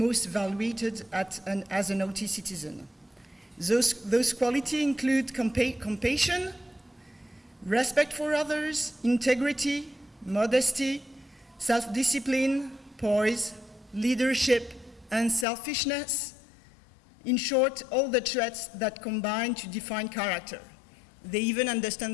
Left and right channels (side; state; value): right; drops out; at 15.5 s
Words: valued as an Awty citizen. Those qualities include compassion, respect for others, integrity, modesty, self-discipline, poise, leadership, and selfishness. In short, all the traits that combine to define character. They even